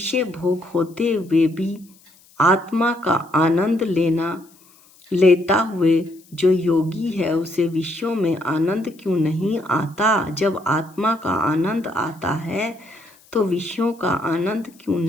भोग होते हुए भी आत्मा का आनंद लेता हुए जो योगी है उसे विषयों में आनंद क्यों नहीं आता। जब आत्मा का आनंद आता है तो विषयों का आनंद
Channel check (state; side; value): noise; left; hiss, 28 dB below the sound